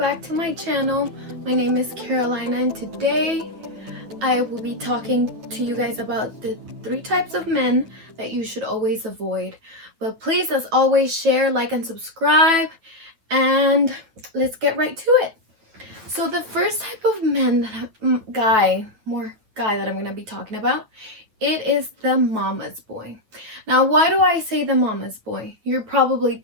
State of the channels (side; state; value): left; late; 9.2 ms